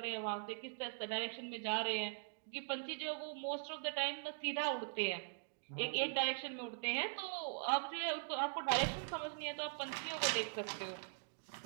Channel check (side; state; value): left; silent; digital silence